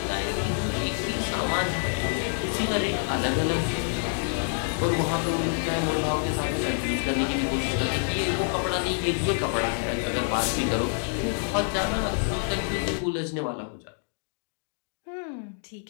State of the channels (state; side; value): silent; right; 60 dB below the other